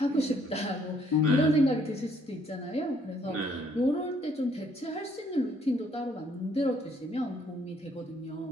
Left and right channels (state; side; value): normal; both; correlation 0.66